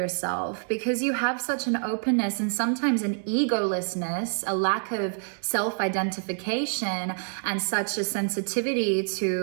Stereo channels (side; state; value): left; silent; 60 dB below the other